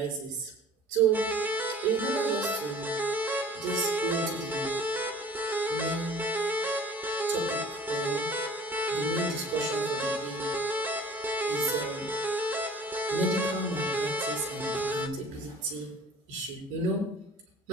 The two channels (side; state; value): both; normal; correlation 0.46